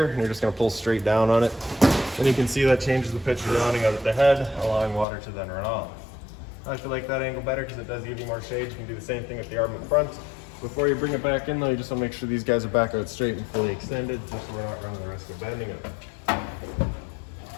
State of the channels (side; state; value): right; drops out; at 5.1 s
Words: and you're just gonna pull straight down on it. Then you can see that changes the pitch of the awning out at the head, allowing water to then run off. I feel like that angle better because it does give you more shade. You can do the same thing with the arm in front. Before you bring it back in though, you just want to make sure these guys are back out straight and fully extended, just so we're not running the risk of bending it.